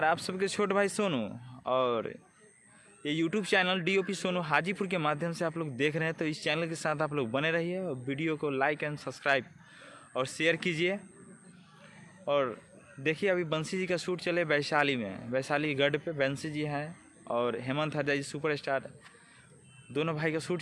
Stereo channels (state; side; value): identical; both; correlation 1.00